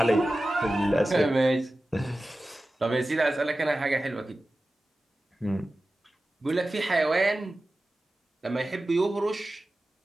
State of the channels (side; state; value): both; normal; correlation 0.95